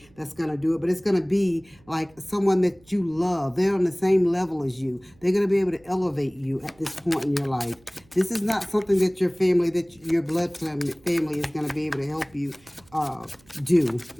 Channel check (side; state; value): right; noise; hum, 30 dB below the sound